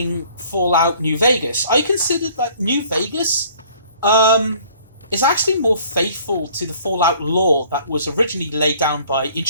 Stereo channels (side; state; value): both; inverted; correlation -0.55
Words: Fallout New Vegas, I considered that New Vegas is actually more faithful to the Fallout lore that was originally laid down by